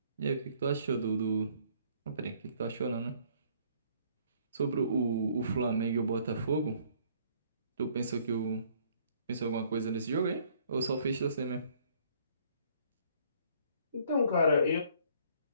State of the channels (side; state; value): both; inverted; correlation -0.61